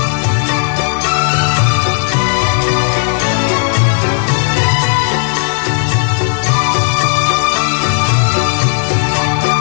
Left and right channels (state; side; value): silent; right; 63 dB below the other